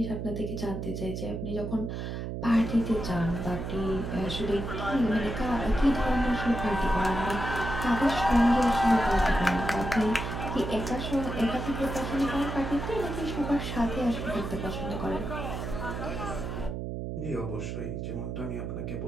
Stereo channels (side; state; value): right; noise; hum, 5 dB below the sound